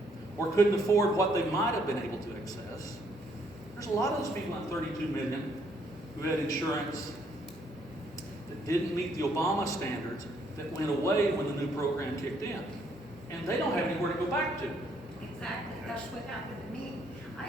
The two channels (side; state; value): both; normal; correlation 0.69